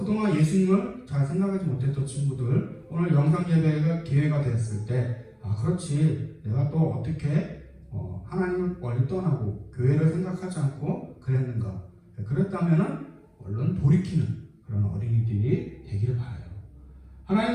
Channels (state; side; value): identical; both; correlation 1.00